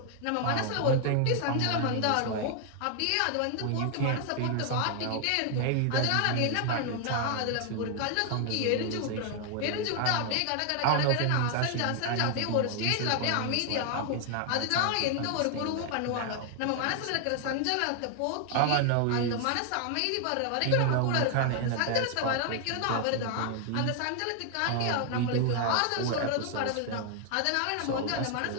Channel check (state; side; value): different; both; correlation 0.00